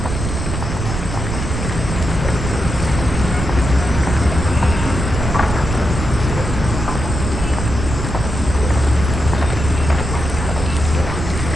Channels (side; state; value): right; noise; rumble, 4 dB below the sound